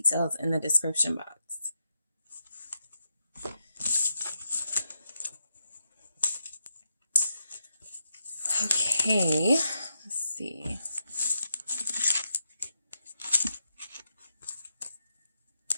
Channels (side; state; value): both; inverted; correlation -0.84